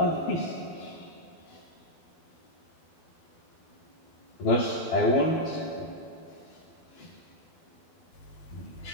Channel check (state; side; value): late; right; 12 ms